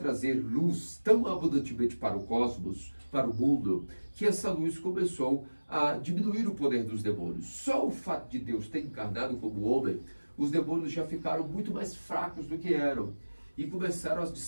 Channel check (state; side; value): inverted; both; correlation -1.00